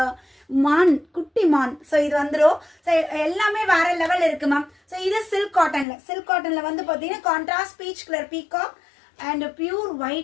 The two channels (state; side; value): drops out; right; at 5.9 s